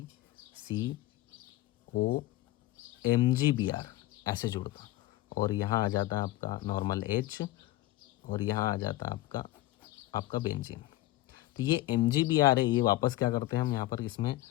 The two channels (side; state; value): right; quieter; 16.7 dB